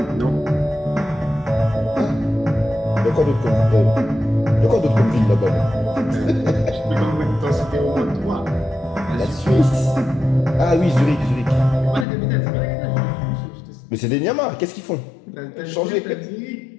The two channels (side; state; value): right; drops out; at 12.1 s